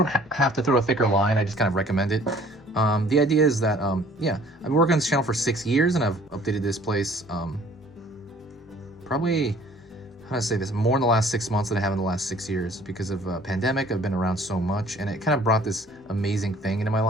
have to throw a thicker line. I just kind of recommend it. The idea is that, yeah, I've been working on this channel for 6 years, and I've updated this place probably, how to say this, more in the last 6 months than I have in the last 6 years. Because of pandemic, I've been around so much, and it kind of brought this amazing thing into my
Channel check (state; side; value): normal; both; correlation 0.54